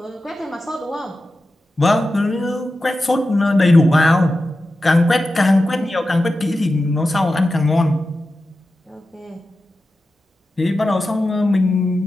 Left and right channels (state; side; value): normal; both; correlation 0.92